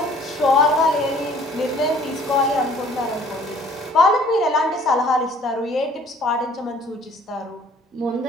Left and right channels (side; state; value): both; normal; correlation 0.55